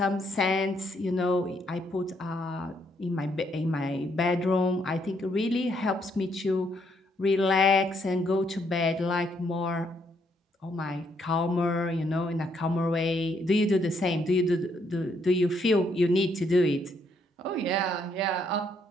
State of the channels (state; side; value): normal; both; correlation 0.72